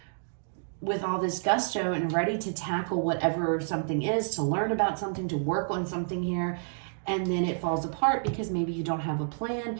with all this gusto and ready to tackle whatever something is, to learn about something, to work on something here. And then it falls apart because maybe you don't have a plan.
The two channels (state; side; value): silent; left; digital silence